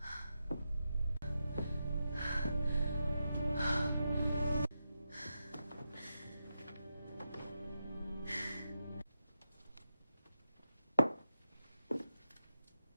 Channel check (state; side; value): inverted; both; correlation -0.87